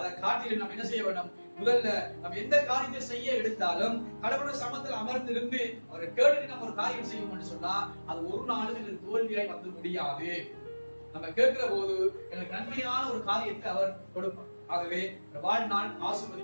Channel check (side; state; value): both; inverted; correlation -1.00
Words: காட்டிலும் நம்ம என்ன செய்ய வேண்டும்? முதல்ல நம்ம எந்த காரியத்தை செய்ய எடுத்தாலும் கடவுள் சமத்தில் அமர்ந்திருந்து அவரை கேட்டு நம்ம ஒரு காரியம் செய்வோம்னு சொன்னா அது ஒரு நாளும் எங்களுக்கு தோல்வியாய் வந்து முடியாது. நம்ம கேட்கிற போது எனக்கு நன்மையான ஒரு காரியத்தை அவர் கொடுப்பார். ஆகவே வாழ்நாள்